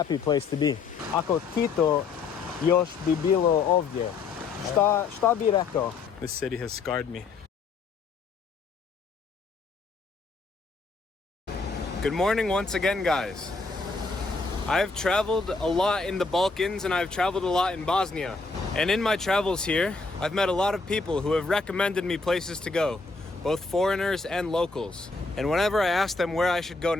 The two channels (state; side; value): quieter; right; 4.2 dB